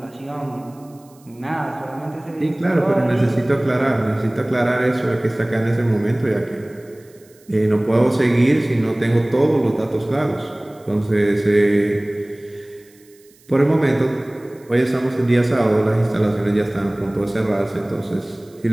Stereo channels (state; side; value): noise; right; hiss, 30 dB below the sound